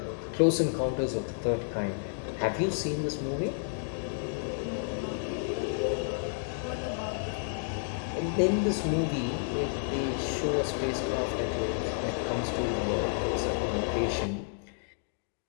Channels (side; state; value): right; silent; digital silence